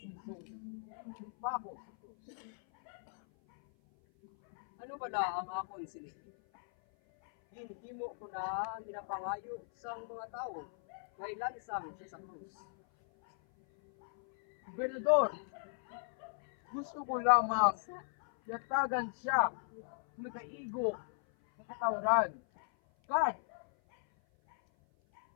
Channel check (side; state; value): right; silent; 53 dB below the other